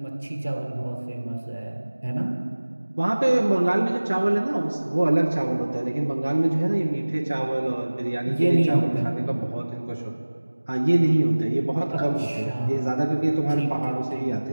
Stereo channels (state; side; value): inverted; both; correlation -1.00